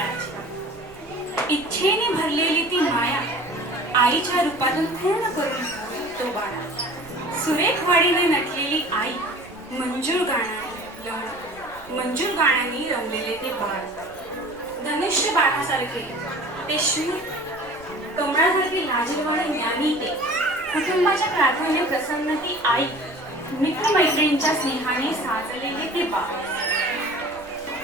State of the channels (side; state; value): right; noise; rumble, 23 dB below the sound